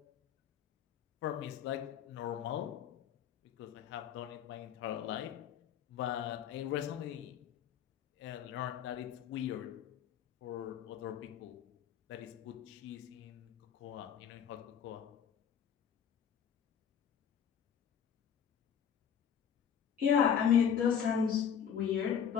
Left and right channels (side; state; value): right; quieter; 8.2 dB